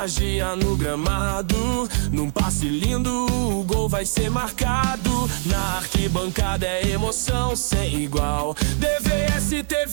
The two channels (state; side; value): silent; left; 64 dB below the other